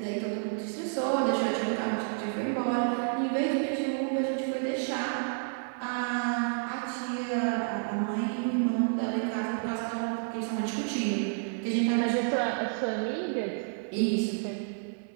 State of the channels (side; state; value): left; silent; 58 dB below the other